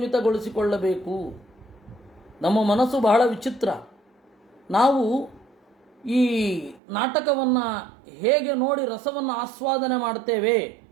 ನಮ್ಮ ಮನಸ್ಸು ಬಹಳ ವಿಚಿತ್ರ. ನಾವು ಈ ನಾಟಕವನ್ನು ಹೇಗೆ ನೋಡಿ ರಸವನ್ನು ಆಸ್ವಾದನೆ ಮಾಡ್ತೇವೆ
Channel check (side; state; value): left; drops out; at 6.8 s